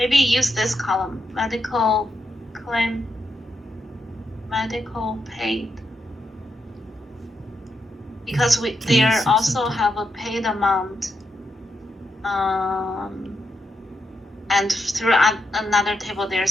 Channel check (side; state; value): both; normal; correlation 0.83